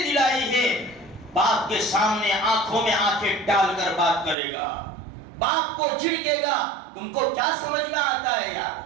دلائی ہے، باپ کے سامنے آنکھوں میں آنکھیں ڈال کر بات کرے گا، باپ کو جھڑکے گا۔ تم کو کیا سمجھ میں آتا ہے یار؟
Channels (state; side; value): drops out; left; at 4.4 s